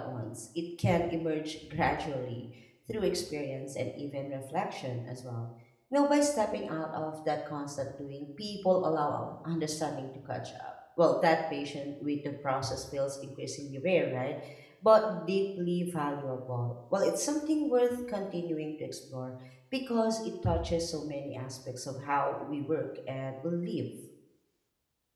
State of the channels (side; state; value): both; identical; correlation 1.00